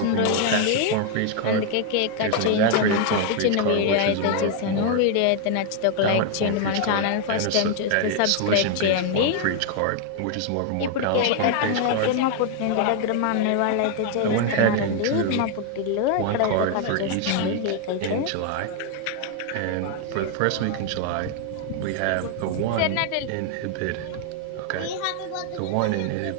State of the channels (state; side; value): different; both; correlation 0.00